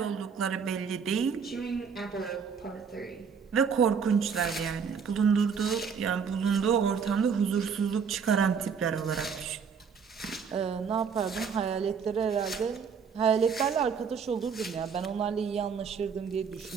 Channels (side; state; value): left; quieter; 6.3 dB